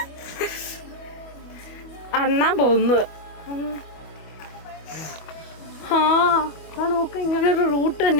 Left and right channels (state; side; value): late; right; 25 ms